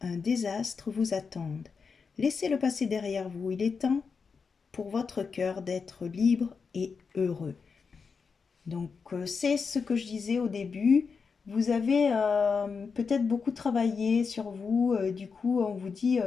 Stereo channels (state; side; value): quieter; right; 5.4 dB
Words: un désastre vous attendent. Laissez-le passer derrière vous. Il est temps pour votre cœur d'être libre et heureux. Donc, c'est ce que je disais au début. Vous avez peut-être beaucoup travaillé sur vous. Du coup, on vous dit,